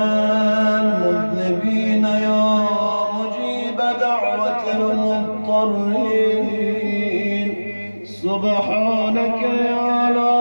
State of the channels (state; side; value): inverted; both; correlation -1.00